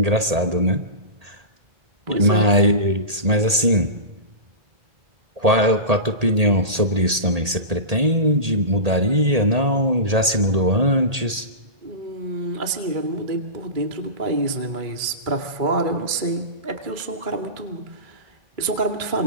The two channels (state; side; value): late; left; 1.8 ms